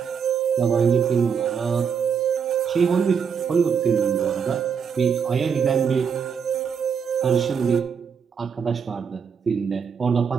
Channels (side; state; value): left; quieter; 6.7 dB